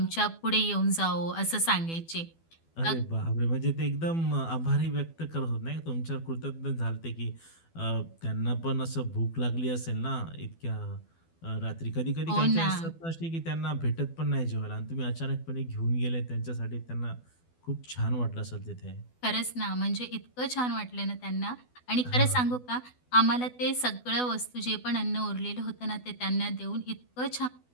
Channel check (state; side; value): late; right; 12 ms